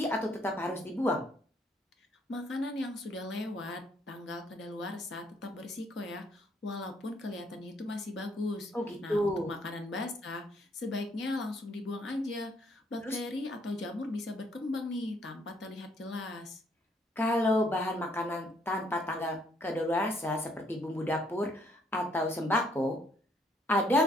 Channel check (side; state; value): both; normal; correlation 0.68